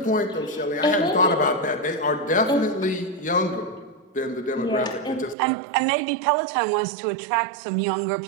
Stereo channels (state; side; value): drops out; left; at 5.4 s